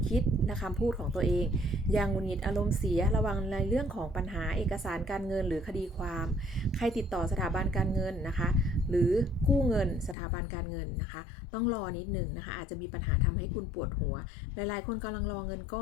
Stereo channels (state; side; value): drops out; right; at 10.2 s